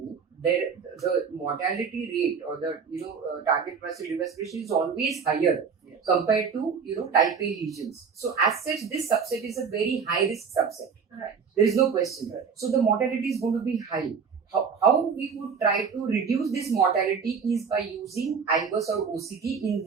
the mortality rate or the target muscle respiration is always higher compared to type A lesions. So as such, this subset is a very high risk subset. Right. There is no question. So the mortality is going to be high. How we would try to reduce this mortality is by using IVUS or OCT in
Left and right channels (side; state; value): left; quieter; 6.0 dB